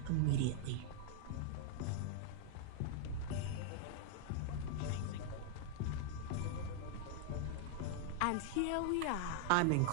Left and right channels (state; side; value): different; both; correlation -0.01